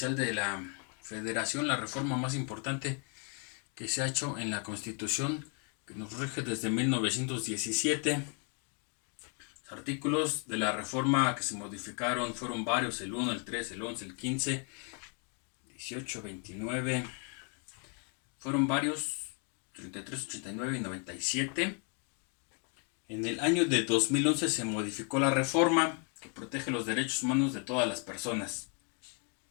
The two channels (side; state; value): right; quieter; 39.3 dB